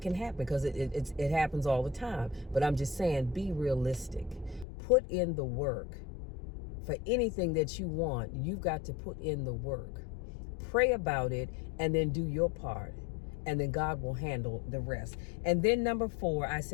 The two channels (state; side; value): drops out; right; at 4.7 s